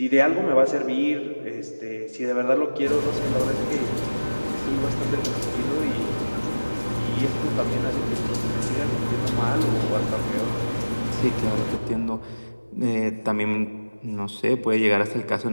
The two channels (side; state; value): both; inverted; correlation -1.00